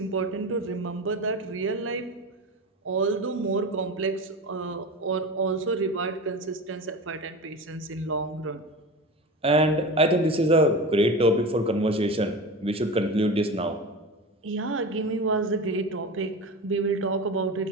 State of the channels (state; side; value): normal; both; correlation 0.28